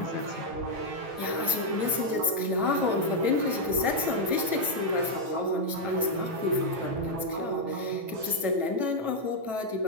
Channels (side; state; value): left; late; 9.1 ms